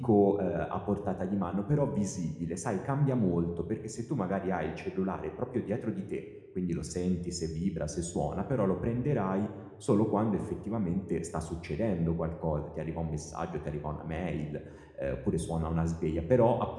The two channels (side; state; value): both; identical; correlation 1.00